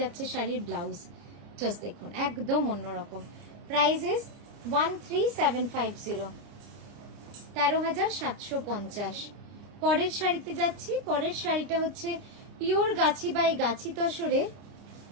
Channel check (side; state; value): left; late; 29 ms